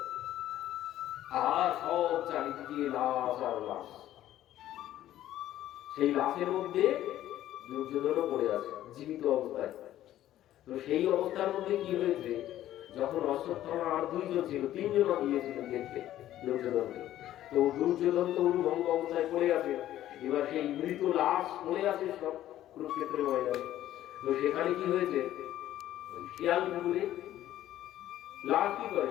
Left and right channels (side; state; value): right; quieter; 13.1 dB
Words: আর সব চারিদিকে লাশ আর লাশ। সেই লাশের মধ্যে দুর্যোধনও পড়ে আছে জীবিত অবস্থায়। তো সেই অবস্থার মধ্যে কি হয়েছে, যখন অশ্বত্থামা আর দুইজন ছিল, তিনজন গিয়েছিলেন দেখতে দুর্যোধনকে। তো দুর্যোধন তো উলুভঙ্গ অবস্থায় পড়ে আছে, এবার সেই মৃত লাশ পড়ে আছে সব কুরুক্ষেত্রের ময়দানে। তো সেখানে কি হয়েছে, শিয়াল কুকুরে লাশ কি করে,